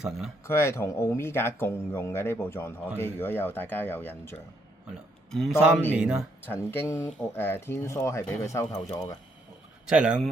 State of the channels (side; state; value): both; normal; correlation 0.73